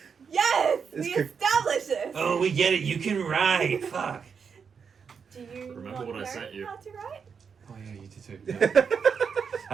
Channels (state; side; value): quieter; left; 6.3 dB